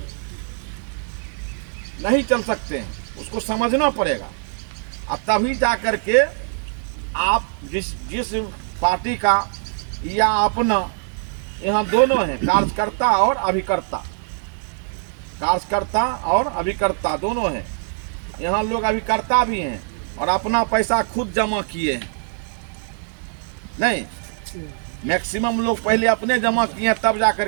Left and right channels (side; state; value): left; silent; digital silence